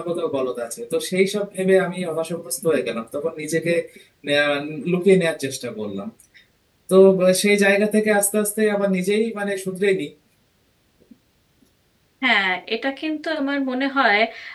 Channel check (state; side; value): identical; both; correlation 1.00